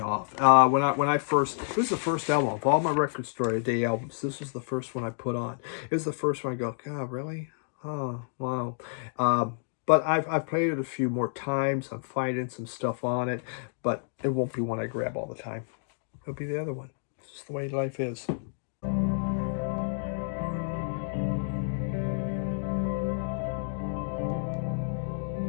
When I first, this was the first album of all my Record Store Day albums. This was the first one I put on. It was the first one I go, God, really? Oh, wow. But I've played it a few more times. I'm finding some stuff on it, but it won't be one I grab all the time. It'll be the other one. It's just the way life is.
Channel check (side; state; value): right; silent; digital silence